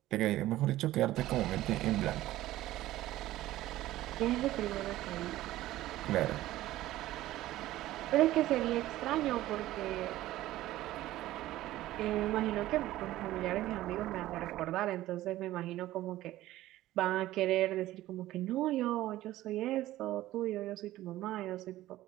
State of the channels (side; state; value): left; quieter; 15.4 dB